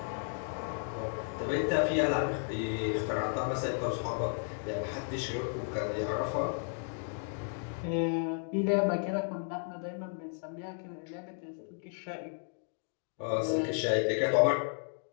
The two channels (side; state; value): right; silent; 55 dB below the other